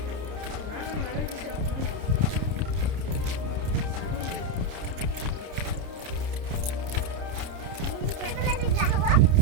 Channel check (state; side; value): late; left; 29 ms